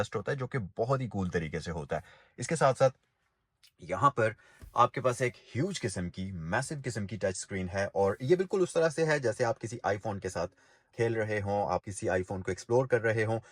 होता है, जो कि बहुत ही कूल तरीके से होता है। इसके साथ साथ यहाँ पर आपके पास एक ह्यूज किस्म की मैसिव किस्म की टच स्क्रीन है और ये बिल्कुल उस तरह से है जैसे आप किसी आईफोन के साथ खेल रहे हों, आप किसी आईफोन को एक्सप्लोर कर रहे हों,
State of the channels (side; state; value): both; identical; correlation 1.00